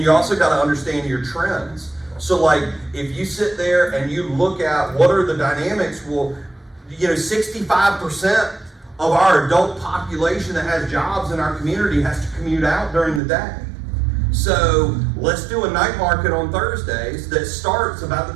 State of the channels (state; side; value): drops out; left; at 13.2 s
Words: you also gotta understand your trends. So like, if you sit there and you look at what are the dynamics, well, you know, 65% of our adult population that has jobs in our community has to commute out during the day. So let's do a night market on Thursdays that starts about